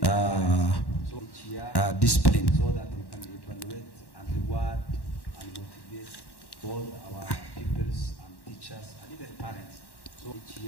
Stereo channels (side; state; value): right; late; 1.1 ms